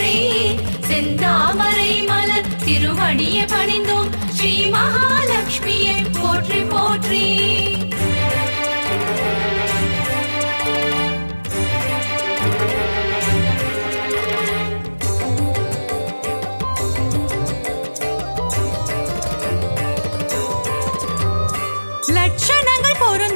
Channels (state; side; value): inverted; both; correlation -1.00